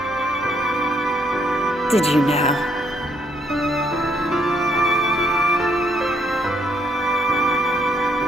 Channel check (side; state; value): both; normal; correlation 0.71